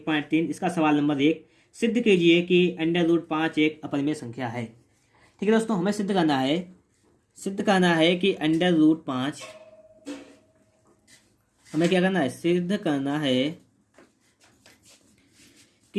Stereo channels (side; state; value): both; identical; correlation 1.00